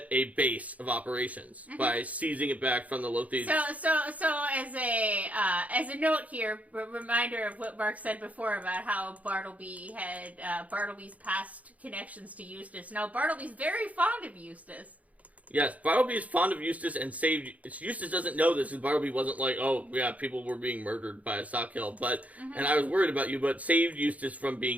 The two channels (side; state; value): left; late; 0.070 ms